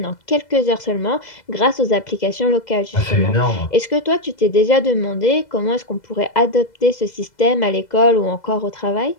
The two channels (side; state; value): right; late; 2.0 ms